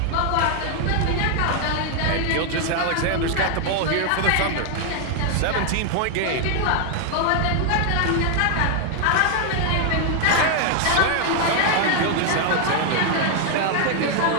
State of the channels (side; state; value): both; different; correlation 0.00